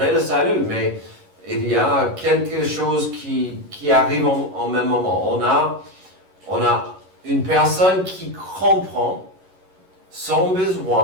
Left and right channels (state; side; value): late; left; 11 ms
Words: le salut, mais il y a quelque chose qui arrive en même moment. On a une personne qui comprend son